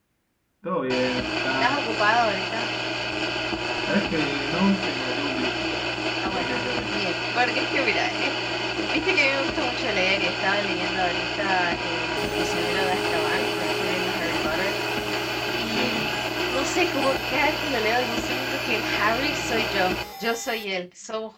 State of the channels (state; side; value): identical; both; correlation 1.00